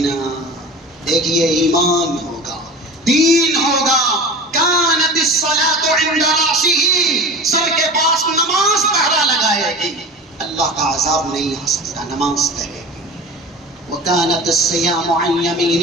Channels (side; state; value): both; normal; correlation 0.34